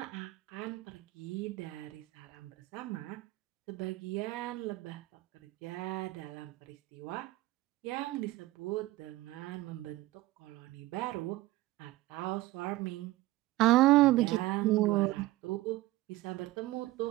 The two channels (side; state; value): left; quieter; 17.5 dB